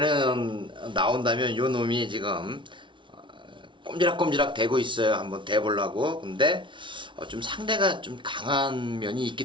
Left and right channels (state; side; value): late; left; 0.24 ms